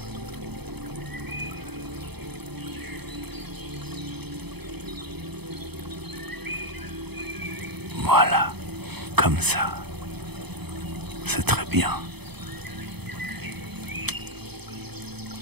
Voilà, comme ça. C'est très bien.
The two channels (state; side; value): late; left; 0.98 ms